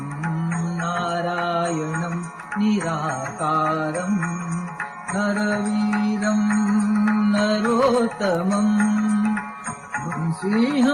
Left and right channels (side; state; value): both; identical; correlation 1.00